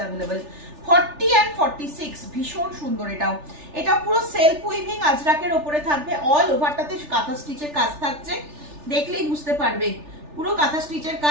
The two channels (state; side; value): late; left; 3.4 ms